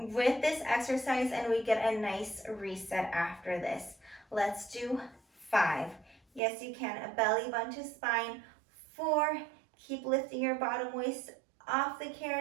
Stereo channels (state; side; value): drops out; left; at 6.4 s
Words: with this exercise, and we get a nice reset after this. Let's do 5. Yes, you can. A belly button to spine. 4. Keep lifting your bottom waist off the